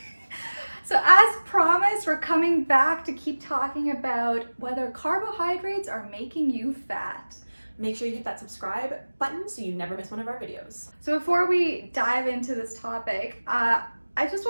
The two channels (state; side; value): inverted; both; correlation -1.00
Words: So as promised, we're coming back to keep talking about whether carbohydrates are making you fat. Make sure you hit that subscribe button so you never miss one of our videos. So before we dive into this topic, I just